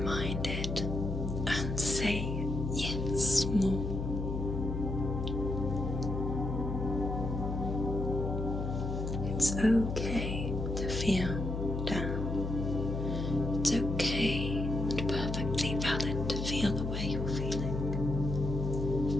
and say yes more. It's okay to feel down. It's okay and perfectly valid to feel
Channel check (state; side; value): noise; left; hum, 3 dB below the sound